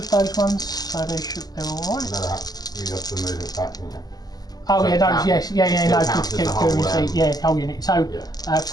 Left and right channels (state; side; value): late; right; 0.19 ms